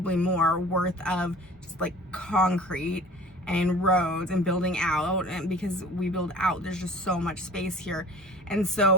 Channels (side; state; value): both; normal; correlation 0.44